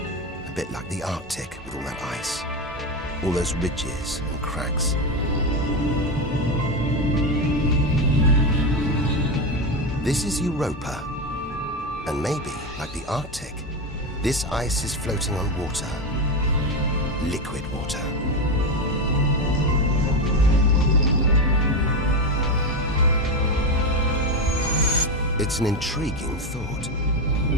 A bit like the Arctic with all that ice, all those ridges and cracks. This is Europa, and maybe, like the Arctic, this ice is floating on water, liquid water. It's an intriguing thought.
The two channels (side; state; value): both; normal; correlation 0.13